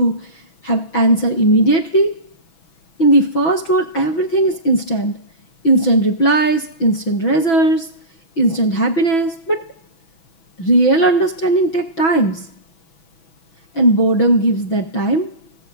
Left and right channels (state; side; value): late; right; 6.1 ms